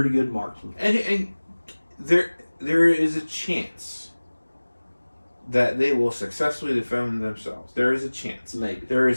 good marksman. And there is a chance that they will successfully defend themselves. There is a chance. Maybe. There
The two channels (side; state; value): both; inverted; correlation -1.00